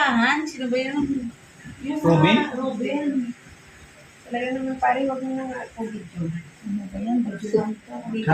Sino ba yun? Yung Robin? Robin. Talaga naman pare, wag mo na nga ako video. Ano ba yan? Video lang to.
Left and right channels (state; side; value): identical; both; correlation 1.00